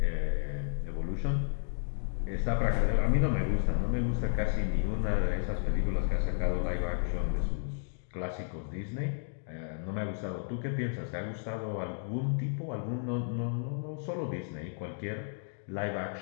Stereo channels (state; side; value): silent; right; digital silence